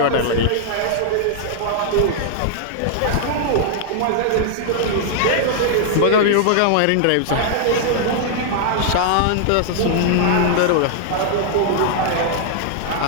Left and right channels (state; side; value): different; both; correlation -0.01